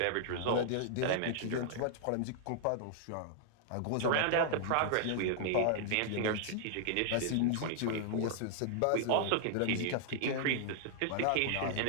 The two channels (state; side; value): different; both; correlation -0.01